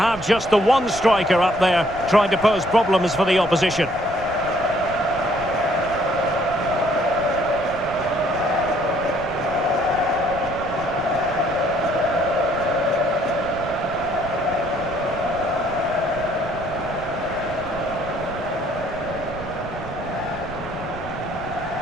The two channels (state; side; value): noise; right; rumble, 14 dB below the sound